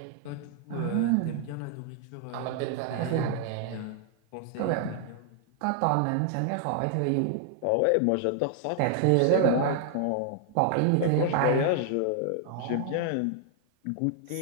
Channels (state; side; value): different; both; correlation 0.00